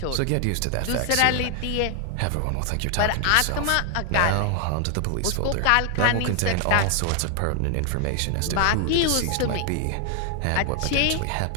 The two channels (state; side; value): different; both; correlation 0.00